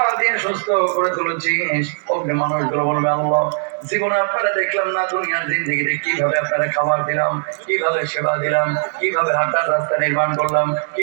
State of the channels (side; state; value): left; silent; digital silence